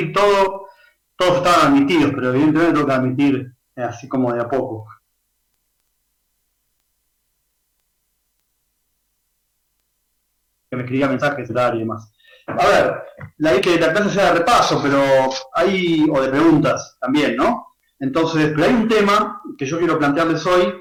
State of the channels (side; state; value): both; identical; correlation 1.00